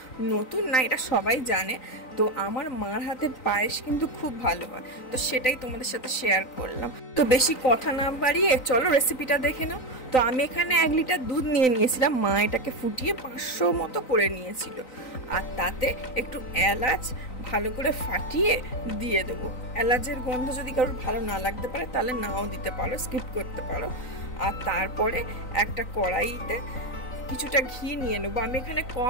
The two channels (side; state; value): right; late; 3.9 ms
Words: নতুন না, এটা সবাই জানে। তো আমার মার হাতের পায়েস কিন্তু খুব ভালো হয়, তো সেটাই তোমাদের সাথে শেয়ার করলাম। তো বেশি কথা না বাড়িয়ে চলো রেসিপিটা দেখে নাও। তো আমি এখানে 1 লিটার দুধ নিয়ে নিয়েছিলাম। মা এটাকে ফুটিয়ে 500 মতো করে নিয়েছিল। আর তাতে একটু এলাচ ভালো করে ফাটিয়ে দিয়ে দেবো। এলাচের গন্ধ যদি কারোর ভালো না লাগতে পারে তাহলে নাও দিতে পারো, স্কিপ করতে পারো। আর তারপরে একটা কড়াইতে কিছুটা ঘি নিয়ে নেবো। আমি এখানে